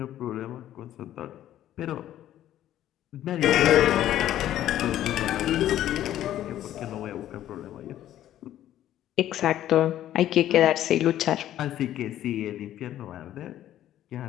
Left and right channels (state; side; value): quieter; right; 12.4 dB